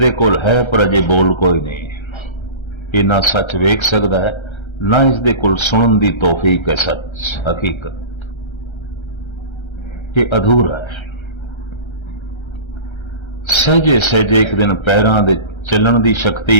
कोल है पर अजे बोल कोई नहीं। ये ना सच वेख सकता है, ना इसदे कोल सुनन दी तौफीक है सच हकीकत। ये अधूरा है। सहजे सहजे एक दिन पैरां दे चलण दी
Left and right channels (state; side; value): late; right; 1.3 ms